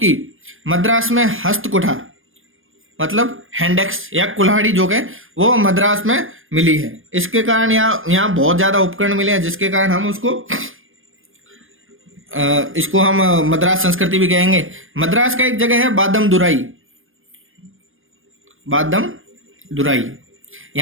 मद्रास में हस्तकुठार मतलब हैंडेक्स या कुल्हाड़ी जो है वो मद्रास में मिली है। इसके कारण यहाँ बहुत ज्यादा उपकरण मिले हैं, जिसके कारण हम उसको इसको हम मद्रास संस्कृति भी कहेंगे। मद्रास का एक जगह है बादम दुराई, बादम दुराई।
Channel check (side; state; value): left; late; 0.59 ms